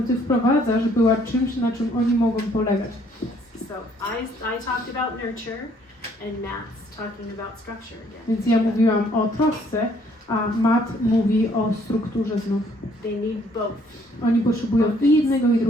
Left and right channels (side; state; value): both; normal; correlation 0.64